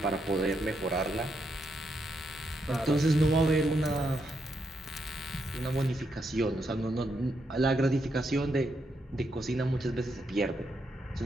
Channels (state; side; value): normal; both; correlation 0.80